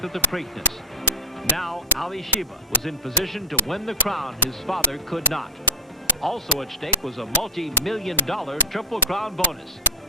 at the Preakness. Now, Ali Sheba was in position to win the crown his father could not. Also at stake was a multi-million-dollar Triple Crown bonus.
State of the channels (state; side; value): normal; both; correlation 0.04